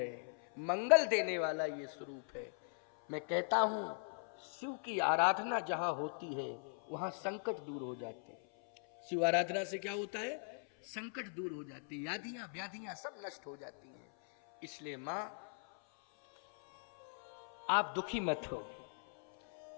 मंगल देने वाला ये स्वरूप है। मैं कहता हूं, शिव की आराधना जहां होती है वहां संकट दूर हो जाते हैं। शिव आराधना से क्या होता है? संकट दूर हो जाते हैं, यादियां व्याधियां सब नष्ट हो जाती हैं। इसलिए मां, आप दुखी मत हो,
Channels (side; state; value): right; silent; 51 dB below the other